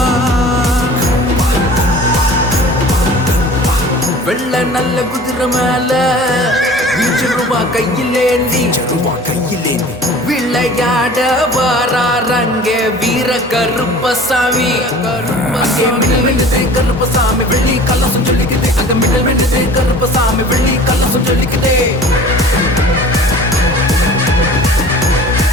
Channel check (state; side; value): normal; both; correlation 0.44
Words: வெள்ள நல்ல குதிரை மேல ரூபா கையிலேந்தி விளையாட வாராரங்க வீர கருப்பசாமி கருப்பசாமி வெள்ளி கலசம் சொல்லிக்குது அங்க மின்னல் மின்னுது கருப்பசாமி வெள்ளி கலசம் சொல்லிக்குது